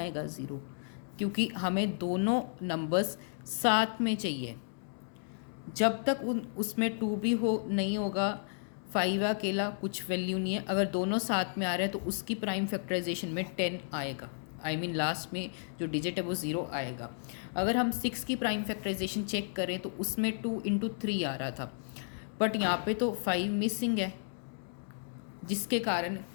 0, क्योंकि हमें दोनों नंबर्स साथ में चाहिए। जब तक उसमें 2 भी हो नहीं होगा, 5 अकेला कुछ वैल्यू नहीं है। अगर दोनों साथ में आ रहे हैं तो उसकी प्राइम फैक्टराइजेशन में 10 आएगा, लास्ट में जो डिजिट है वो 0 आएगा। अगर हम 6 की प्राइम फैक्टराइजेशन चेक करें तो उसमें 2 इंटू 3 आ रहा था, बट यहाँ पे तो 5 मिसिंग है, जिसके कारण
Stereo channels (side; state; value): right; silent; digital silence